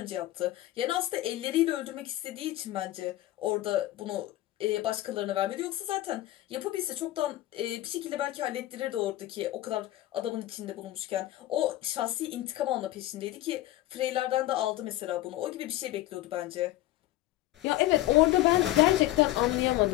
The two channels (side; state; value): right; quieter; 16.0 dB